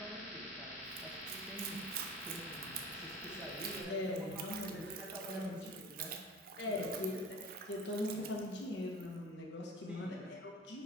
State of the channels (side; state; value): both; normal; correlation 0.38